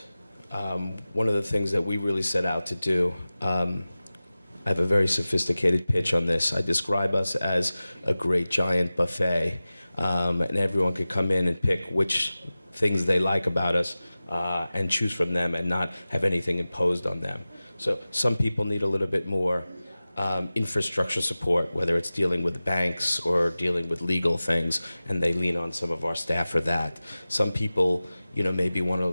One of the things that we really set out to do, I have a very sophisticated pitch on this. I describe us as a great giant buffet, and everyone could come in and pick which things they like about us and choose from them and not have anything imposed on them. So some people need a little bit more infrastructure support, whether it's dealing with banks or dealing with legal things, and they lean on some of our staff for that. Some people, maybe want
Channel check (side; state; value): both; inverted; correlation -0.96